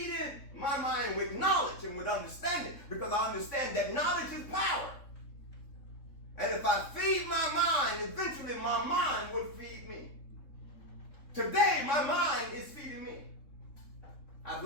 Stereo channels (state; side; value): late; right; 3.6 ms